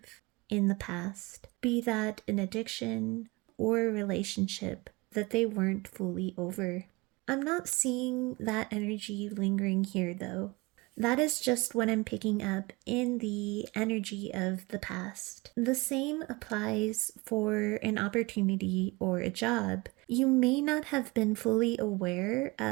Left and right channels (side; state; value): left; quieter; 24.2 dB